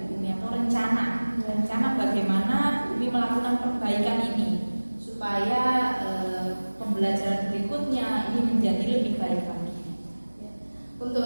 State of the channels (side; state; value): both; inverted; correlation -1.00